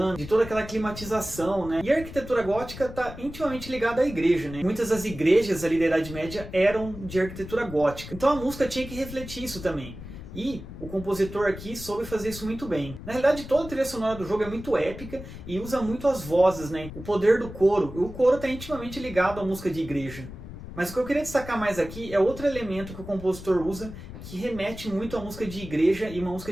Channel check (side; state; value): left; noise; rumble, 12 dB below the sound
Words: de toda aquela climatização, né? E a arquitetura gótica está intimamente ligada à igreja, né? Muitas das igrejas ali da Idade Média eram de arquitetura gótica. Então a música tinha que refletir isso também. E o compositor aqui soube fazer isso muito bem. Na realidade, toda a trilha sonora do jogo é muito épica e usa muito as vozes, né? O poder do coro. O coro está intimamente ligado à música de igreja. Mas o que eu queria destacar mais aqui é outro elemento que o compositor usa que remete muito à música de igreja e uma música